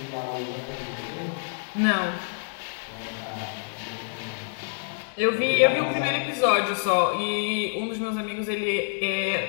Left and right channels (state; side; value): silent; right; 60 dB below the other